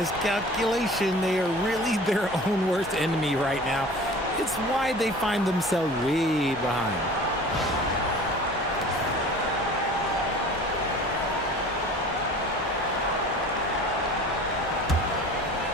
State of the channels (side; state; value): both; normal; correlation 0.43